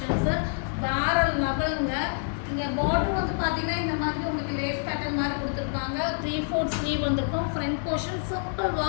வேற லெவலுங்க. இங்கே பார்டர் வந்து பார்த்தீங்கன்னா இந்த மாதிரி உங்களுக்கு லேஸ் பேட்டர்ன் மாதிரி கொடுத்துருப்பாங்க. 3/4 ஸ்லீவ் வந்துருக்கும். Front portion simple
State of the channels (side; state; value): right; silent; digital silence